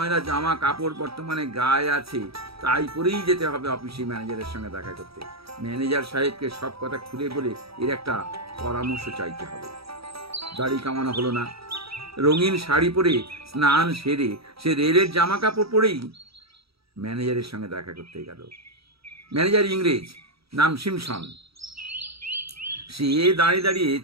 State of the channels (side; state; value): left; late; 0.76 ms